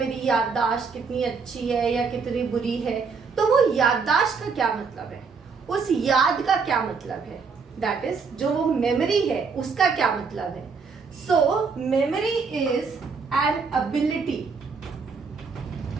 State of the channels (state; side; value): quieter; left; 5.1 dB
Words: याददाश्त कितनी अच्छी है या कितनी बुरी है। तो वो याददाश्त का क्या मतलब है, उस याद का क्या मतलब है, दैट इज जो वो मेमोरी है उसका क्या मतलब है। So memory is an ability,